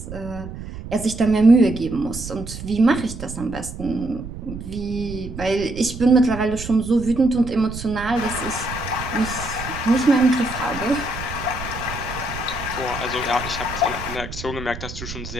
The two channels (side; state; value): right; noise; rumble, 10 dB below the sound